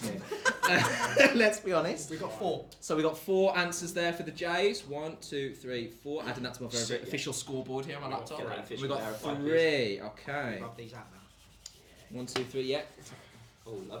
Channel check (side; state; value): both; identical; correlation 1.00